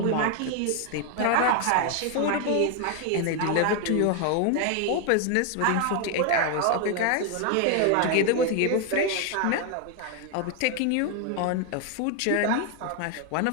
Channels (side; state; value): both; different; correlation 0.01